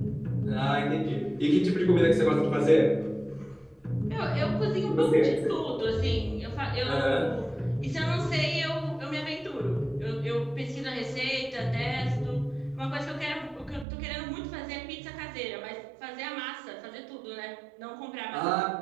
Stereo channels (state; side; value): drops out; left; at 13.9 s